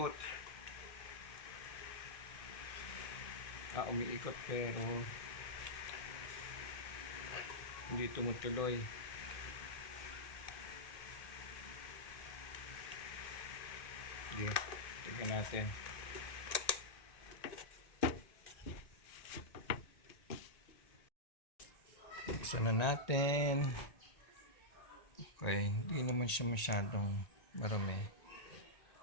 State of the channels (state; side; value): late; right; 1.8 ms